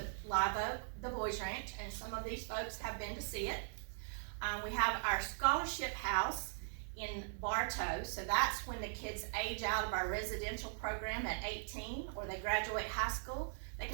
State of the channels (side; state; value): left; silent; digital silence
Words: Live Oak, the Boys Ranch, and some of these folks have been to see it. We have our scholarship house in Bartow, so that's when the kids age out of our residential program at 18 or they graduate high school. They